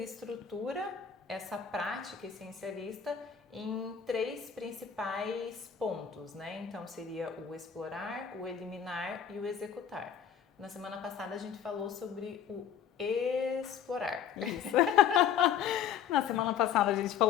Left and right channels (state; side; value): quieter; right; 8.3 dB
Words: estrutura essa prática essencialista em 3 principais pontos, né? Então seria o explorar, o eliminar e o executar. Na semana passada a gente falou sobre o explorar. Isso. Na semana passada a gente